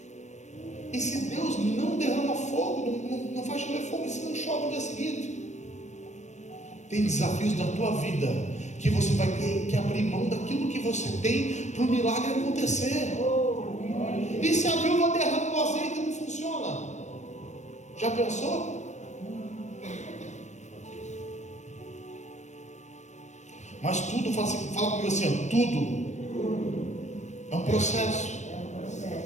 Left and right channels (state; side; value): late; right; 0.34 ms